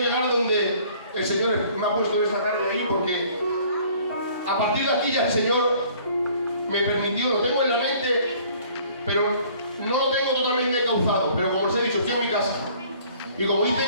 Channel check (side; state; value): both; inverted; correlation -0.55